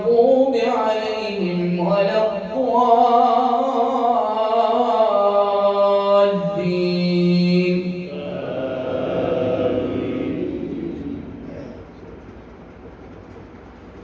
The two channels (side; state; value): both; identical; correlation 1.00